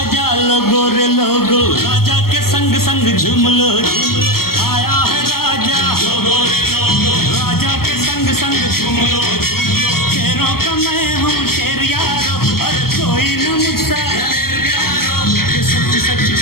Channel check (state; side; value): late; right; 0.94 ms